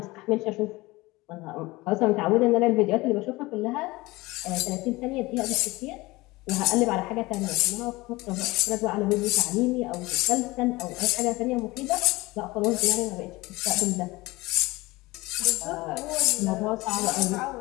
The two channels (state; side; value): quieter; right; 21.2 dB